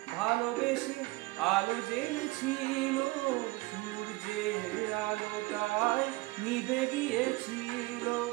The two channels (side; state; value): left; quieter; 22.1 dB